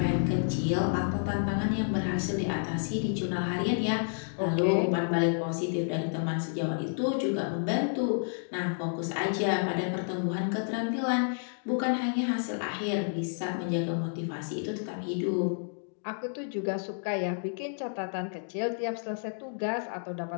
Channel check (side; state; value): right; silent; digital silence